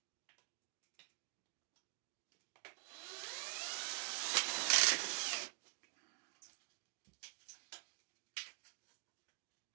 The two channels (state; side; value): silent; left; digital silence